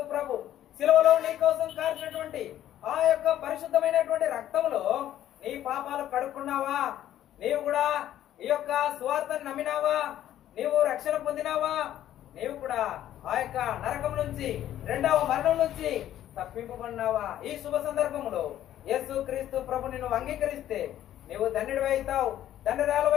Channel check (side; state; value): right; quieter; 12.0 dB